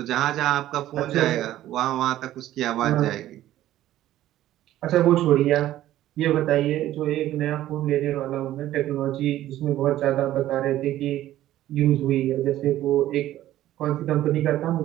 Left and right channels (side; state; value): left; quieter; 13.8 dB